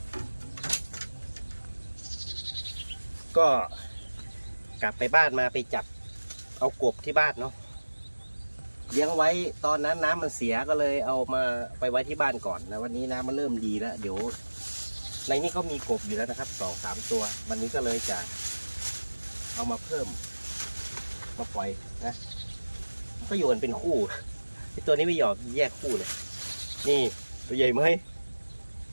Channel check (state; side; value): inverted; both; correlation -1.00